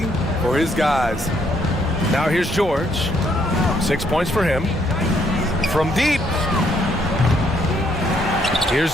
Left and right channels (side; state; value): both; normal; correlation 0.70